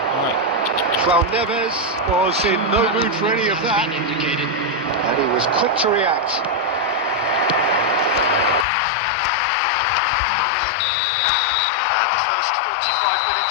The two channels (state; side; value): drops out; right; at 8.7 s